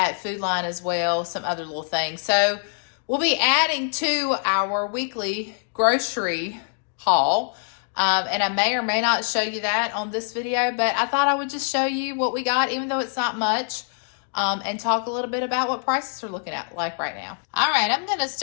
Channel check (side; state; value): right; silent; digital silence